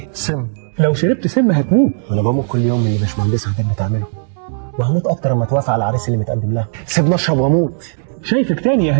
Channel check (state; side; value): silent; left; 69 dB below the other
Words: سم. لو شربت سم هتموت. انا بموت كل يوم من اللي باشمهندس هتبقى تعمله، وهموت اكتر لما توافق على العريس اللي متقدم لها. سيبني اشرب واموت. شايفك تاني يا